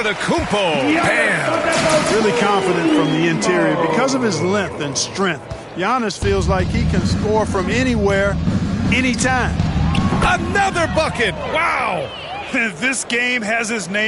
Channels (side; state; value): both; identical; correlation 1.00